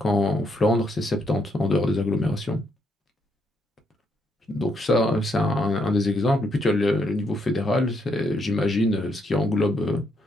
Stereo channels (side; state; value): both; normal; correlation 0.75